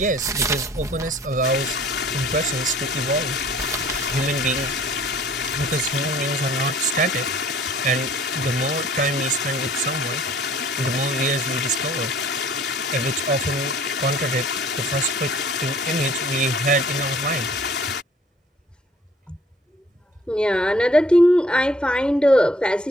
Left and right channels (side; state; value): both; normal; correlation 0.54